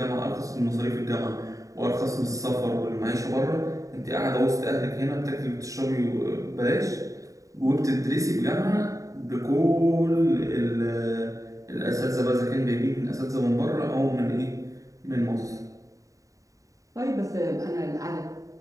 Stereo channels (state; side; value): late; left; 0.16 ms